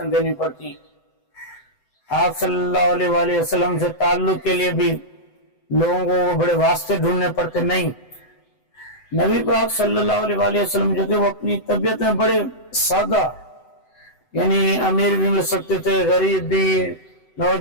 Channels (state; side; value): late; right; 7.9 ms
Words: देनी पड़ती, आप सल्लल्लाहु अलैहि वसल्लम से ताल्लुक के लिए भी लोगों को बड़े वास्ते ढूंढने पड़ते। नहीं, नबी पाक सल्लल्लाहु अलैहि वसल्लम जो थे वो अपनी तबीयत में बड़े सादा, यानी अमीर भी मिल सकते थे, गरीब भी,